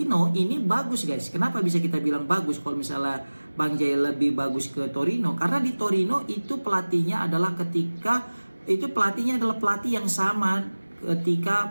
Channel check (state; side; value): inverted; both; correlation -1.00